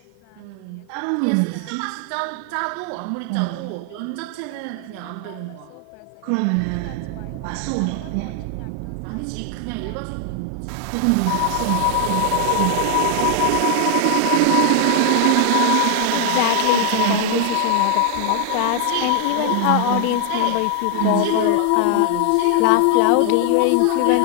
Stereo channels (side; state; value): both; different; correlation 0.00